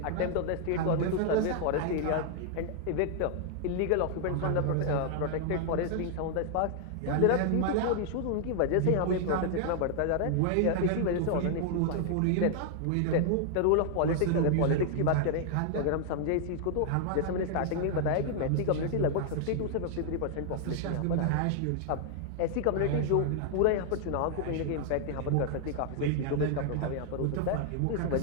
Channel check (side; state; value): both; different; correlation 0.00